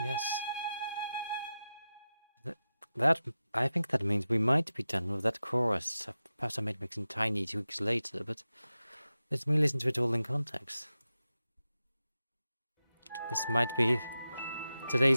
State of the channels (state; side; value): inverted; both; correlation -0.92